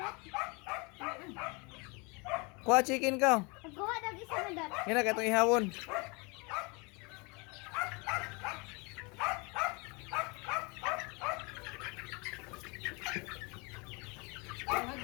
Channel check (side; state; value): right; quieter; 29.7 dB